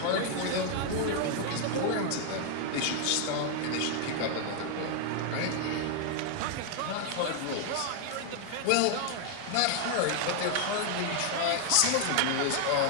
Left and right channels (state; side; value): different; both; correlation 0.00